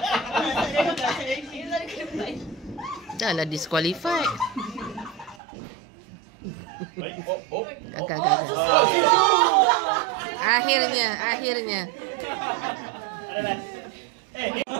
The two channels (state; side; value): drops out; left; at 5.4 s